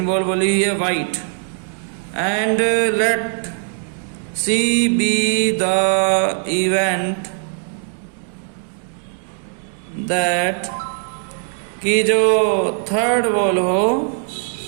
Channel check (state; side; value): silent; left; 60 dB below the other